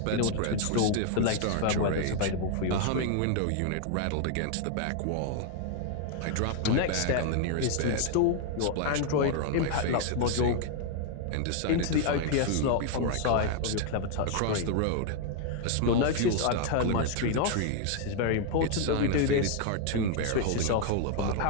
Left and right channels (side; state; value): both; different; correlation 0.00